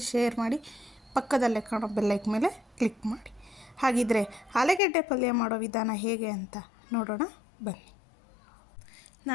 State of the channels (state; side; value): drops out; right; at 4.8 s